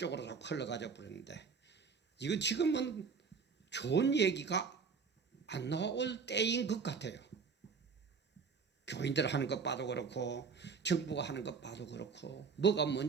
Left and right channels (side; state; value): left; quieter; 5.5 dB